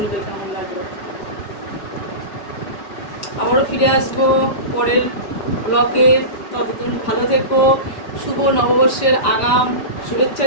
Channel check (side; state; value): right; late; 5.0 ms